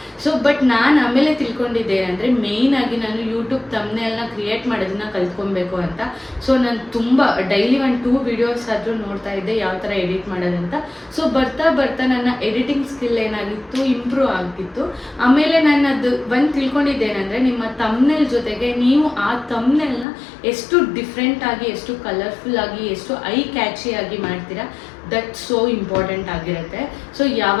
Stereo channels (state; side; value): drops out; right; at 20.1 s